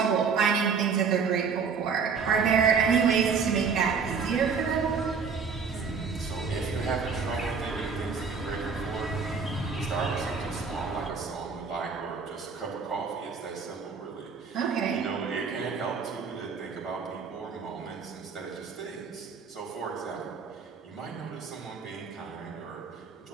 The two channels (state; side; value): quieter; left; 5.6 dB